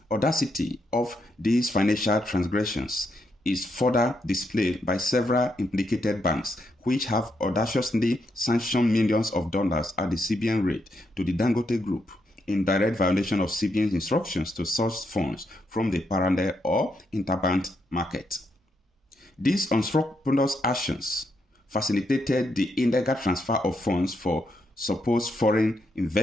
audacity of these financial transgressions is further displayed by several implicated banks, which have audaciously sanctioned millions of dollars at the CBN rate to the Dangote Group, in direct violation of CBN's instructions to source funds from the parallel or interbank market. These unscrupulous actions facilitated the illegal transfer of funds for supposed foreign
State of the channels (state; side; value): normal; both; correlation 0.80